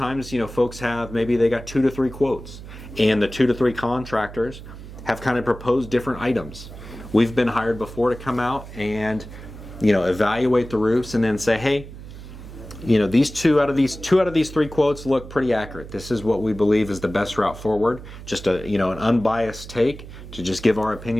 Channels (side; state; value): right; noise; hum, 14 dB below the sound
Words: folks maybe they got 2 to 3 quotes, and the 2 to 3 contractors have kind of proposed different items. We've been hired before to come out and evaluate the roofs and then say, hey, these two out of these 3 quotes look pretty accurate. This is what we believe is the best route forward. Just an unbiased take to just give our